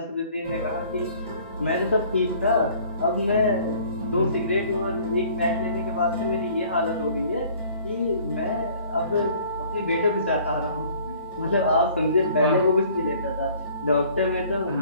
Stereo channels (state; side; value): inverted; both; correlation -0.54